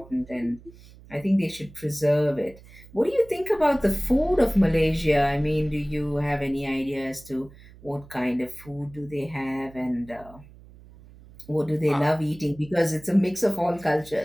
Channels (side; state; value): right; noise; hum, 22 dB below the sound